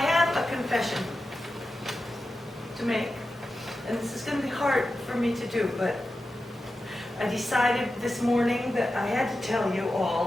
a confession to make. And this is going to be hard for me to do, but I decided this morning that I had to tell you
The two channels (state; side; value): normal; both; correlation 0.91